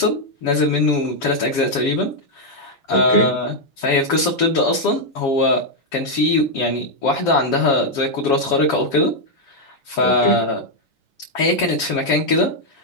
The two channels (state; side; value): late; right; 6.9 ms